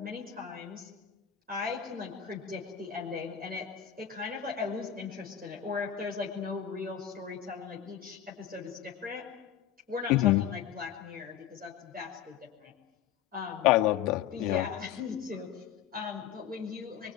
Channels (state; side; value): quieter; right; 9.9 dB